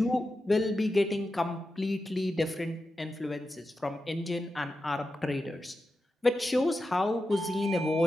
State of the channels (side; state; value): both; normal; correlation 0.90